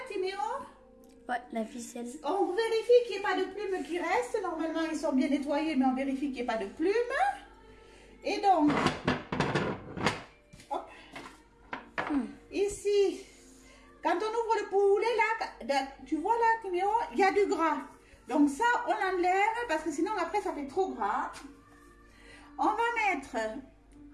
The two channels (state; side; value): identical; both; correlation 1.00